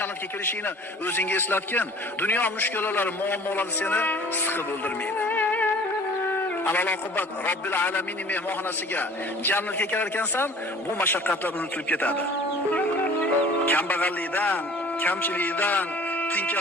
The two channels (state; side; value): normal; both; correlation 0.48